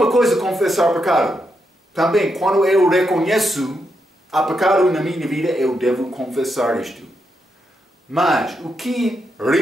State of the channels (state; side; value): normal; both; correlation 0.83